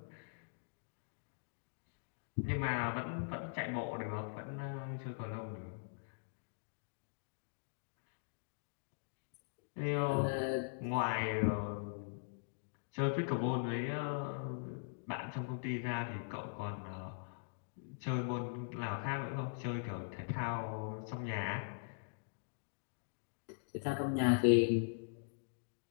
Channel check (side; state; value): right; silent; digital silence